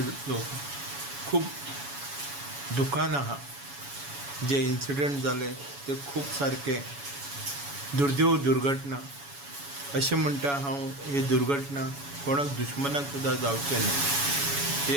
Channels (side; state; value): left; late; 7.1 ms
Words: लोक खूप दुखान आहा। जे इन्सिडेंट जाले ते खूप सारके दुर्दैव दुर्घटना अशें म्हणटा हांव। ही दुर्घटना कोणाक दुश्मनाक सुद्दां जावचें न्हय।